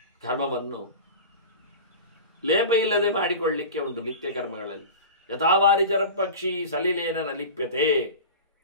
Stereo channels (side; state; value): both; inverted; correlation -0.32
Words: ಕರ್ಮವನ್ನು ಲೇಪ ಇಲ್ಲದೆ ಮಾಡಿಕೊಳ್ಳಲಿಕ್ಕೆ ಉಂಟು ನಿತ್ಯ ಕರ್ಮಗಳಲ್ಲಿ. ಯಥಾವಾರಿಚರ ಪಕ್ಷಿ ಸಲಿಲೇನ ನಲಿಪ್ಯತೆ.